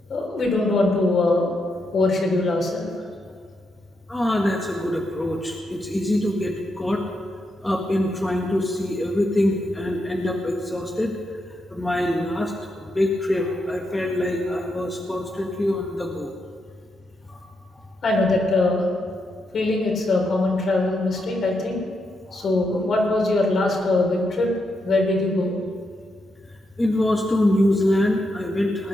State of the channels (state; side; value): normal; both; correlation 0.82